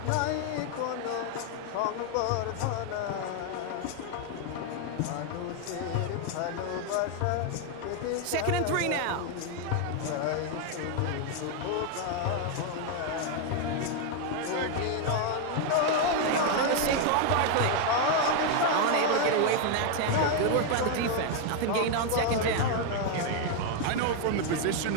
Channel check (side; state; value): both; different; correlation 0.00